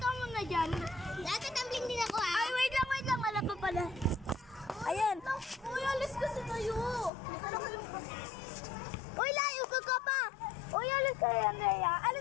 muna dyan. Nagtatumbling din ako Ay, wait lang, wala pa pala. Ayan. Uy, alis kasi tayo. Uy, layo ka pa. Uy, alis kayo, Andrea.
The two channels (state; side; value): drops out; right; at 7.1 s